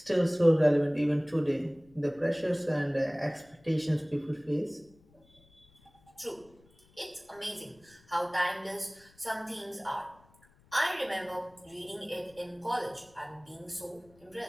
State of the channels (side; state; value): left; noise; rumble, 29 dB below the sound